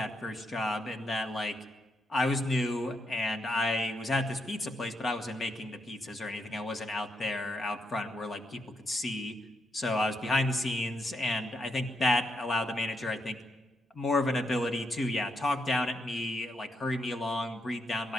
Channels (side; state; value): both; normal; correlation 0.80